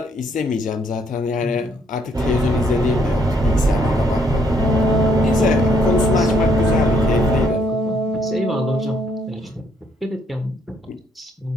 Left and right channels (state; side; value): normal; both; correlation 0.70